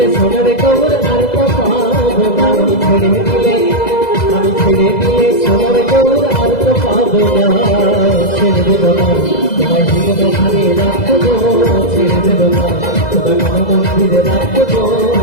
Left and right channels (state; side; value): late; right; 2.0 ms